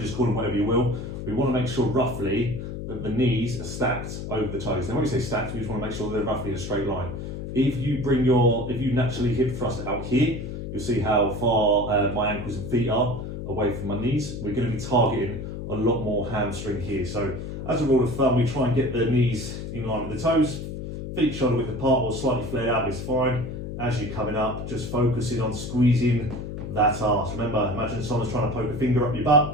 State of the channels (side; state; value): left; noise; hum, 7 dB below the sound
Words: call them whatever you will, we want to make sure roughly that the knees are stacked over the toes. Now when we say stacked, we just want to make sure they're roughly in a straight line. If you naturally hip thrust out here, you'll see how far my ankles and feet are away from my knees. We're going to be targeting a lot more hamstring here. So as a rule of thumb, we try and get the knees in line with the toes. Feet shoulder width apart or slightly flared out is fine. As you're coming up, just focusing on squeezing that arse. Remember, imagine someone's trying to poke a finger up your